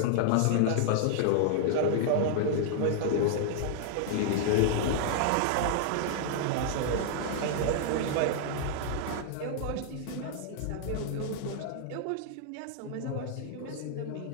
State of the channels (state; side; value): different; both; correlation -0.01